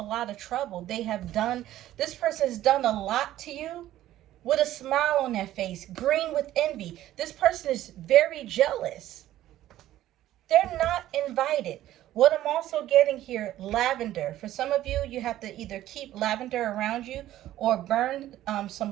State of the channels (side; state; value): left; quieter; 13.7 dB